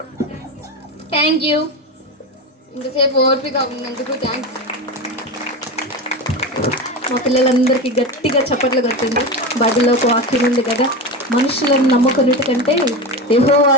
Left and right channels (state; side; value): normal; both; correlation 0.21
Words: Thank you. ఇంతసేపు ఓర్పిగా ఉన్నందుకు థ్యాంక్స్. మా పిల్లలందరికీ గట్టిగా చప్పట్లు కొట్టింది. బైబిల్లో ఒక వాక్యం ఉంది కదా, మనుషులను నమ్ముకున్నట్టు కంటే